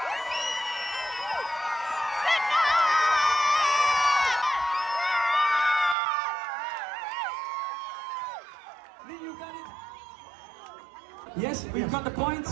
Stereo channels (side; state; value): left; drops out; at 6.0 s